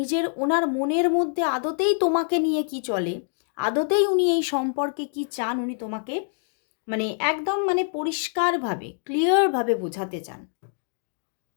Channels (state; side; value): silent; right; digital silence